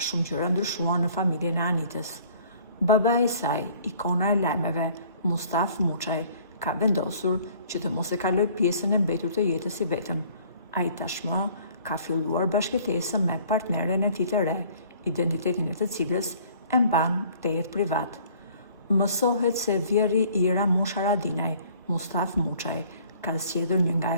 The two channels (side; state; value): both; inverted; correlation -0.55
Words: gjëra ndryshuan në familjen e Anitës. Babai i saj, ikona e lajmeve, Mustaf Muçaj, ka vendosur që të mos e kaloj pjesën e mbetur të jetës i vetëm. Ai tashmë ka filluar bashkëtesën me partneren e tij të re, identitetin e të cilës e mban te jetë privat. Mësohet se vjerri i Ramush Haradinaj, Mustaf Muçaj, ka zgjedhur një nga